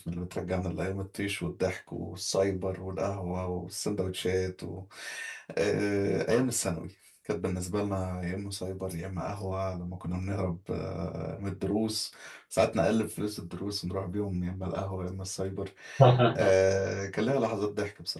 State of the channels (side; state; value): both; identical; correlation 1.00